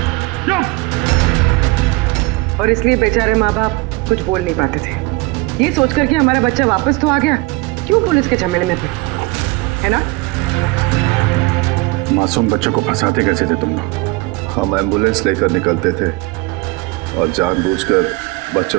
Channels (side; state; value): left; quieter; 23.3 dB